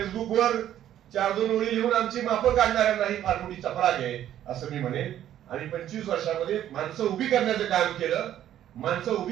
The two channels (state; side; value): quieter; left; 11.5 dB